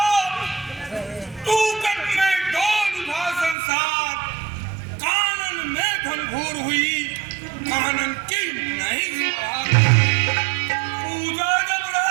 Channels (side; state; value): left; drops out; at 3.6 s